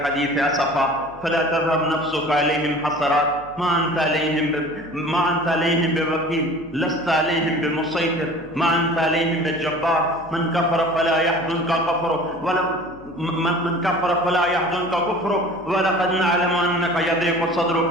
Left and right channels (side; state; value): left; noise; hum, 23 dB below the sound